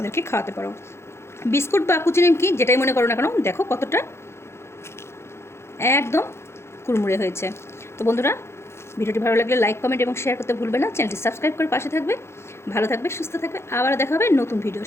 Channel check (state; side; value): late; right; 0.13 ms